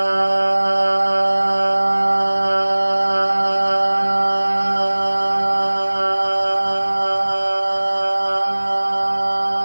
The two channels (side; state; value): both; inverted; correlation -1.00